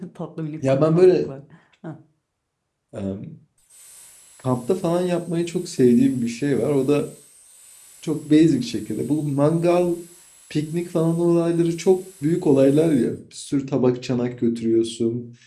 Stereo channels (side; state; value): both; identical; correlation 1.00